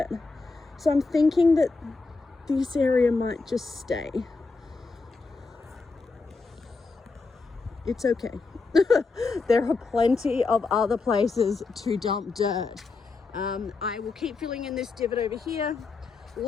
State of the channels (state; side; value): quieter; right; 4.1 dB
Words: So I'm thinking that this area might just stay. It's okay. There are plenty of other places to dump dirt. I will keep filling in this divot over here,